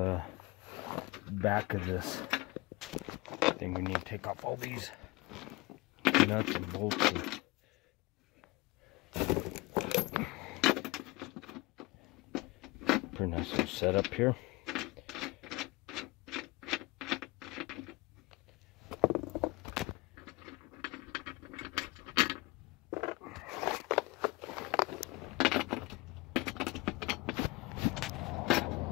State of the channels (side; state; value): right; quieter; 22.4 dB